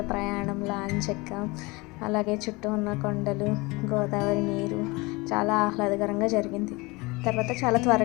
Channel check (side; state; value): right; quieter; 24.5 dB